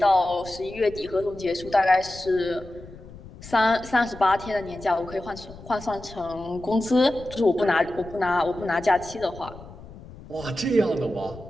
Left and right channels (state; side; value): noise; left; rumble, 17 dB below the sound